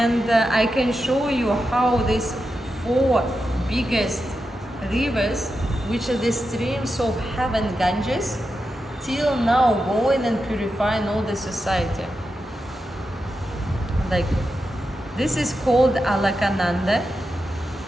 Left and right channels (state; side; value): normal; both; correlation 0.89